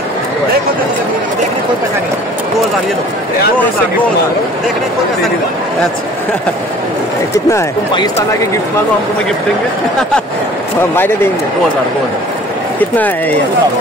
देखने कोई पैसा नहीं, 2000 ये लो, 2000 देखने कोई पैसा नहीं। अच्छा कितना है? तुम पाकिस्तान आके गिफ्ट मांगो, हमको मैं गिफ्ट देंगे। বাইরে देंगे। 2000। कितना है ये?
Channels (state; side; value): normal; both; correlation 0.49